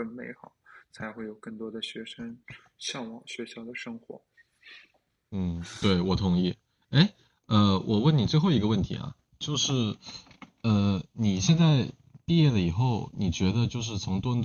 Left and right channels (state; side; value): identical; both; correlation 1.00